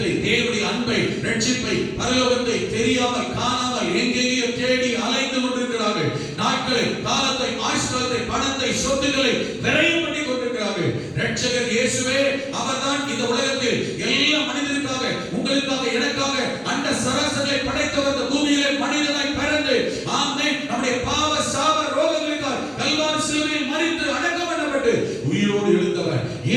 தேவனுடைய அன்பை, ரட்சிப்பை, பரலோகத்தை தெரியாமல், காணாமல் எங்கெங்கேயோ தேடி அலைந்து கொண்டிருக்கிறார்கள். நாட்களை, காலத்தை, ஆயுஷ்காலத்தை, பணத்தை, சொத்துக்களை விரயம் பண்ணி கொண்டிருக்கிறார்கள். ரட்சகர் இயேசுவே அவர்தான் இந்த உலகத்தில் எல்லா மனிதருக்காக, உங்களுக்காக, எனக்காக அந்த சராசரியை படைத்தவர். இந்த பூமியிலே மனிதனாய் பிறந்து, ஆமென், நம்முடைய பாவ சாப ரோகங்களுக்காக கல்வாரி சிலுவையில் மரித்து அடக்கம் பண்ணப்பட்டு உயிரோடு எழுந்தவர்,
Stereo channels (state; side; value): identical; both; correlation 1.00